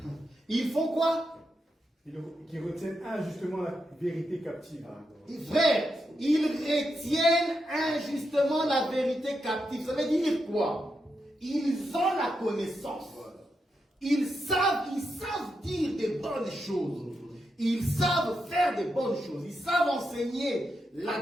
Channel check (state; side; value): normal; both; correlation 0.85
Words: Ils font quoi? Qui retiennent injustement la vérité captive. Frère, ils retiennent injustement la vérité captive. Ça veut dire quoi? Ils ont la connaissance. Ils savent dire des bonnes choses. Ils savent faire des bonnes choses. Ils savent enseigner